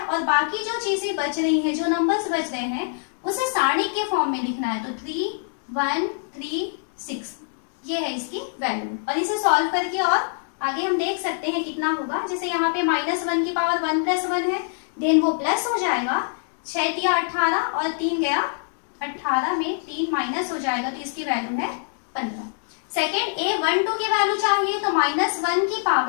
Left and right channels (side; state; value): right; silent; digital silence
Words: बाकी जो चीजें बच रही हैं, जो नंबर्स बच रहे हैं, उसे सारणिक के फॉर्म में लिखना है। तो 3 1 3 6 ये है इसकी वैल्यू। और इसे सॉल्व करके और आगे हम देख सकते हैं कितना होगा। जैसे यहाँ पे -1 की पावर 1 + 1 है, देन वो प्लस हो जाएगा, 6 × 18 और 3 गया 18 में 3 माइनस हो जाएगा, तो इसकी वैल्यू है 15। सेकेंड A12 की वैल्यू चाहिए तो -1 की